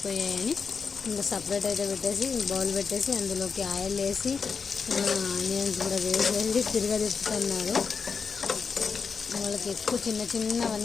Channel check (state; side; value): quieter; right; 5.6 dB